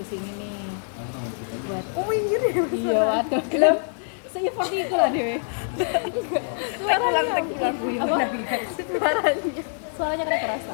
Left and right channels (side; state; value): right; silent; digital silence